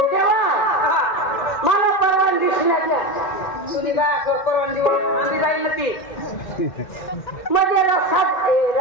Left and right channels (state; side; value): late; right; 2.1 ms